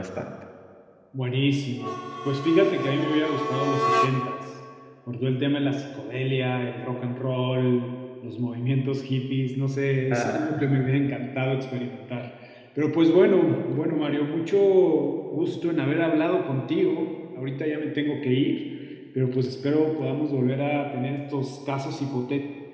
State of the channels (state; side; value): identical; both; correlation 1.00